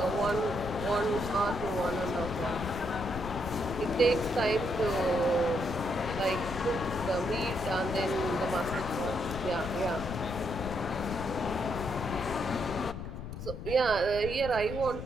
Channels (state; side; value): noise; left; rumble, 8 dB below the sound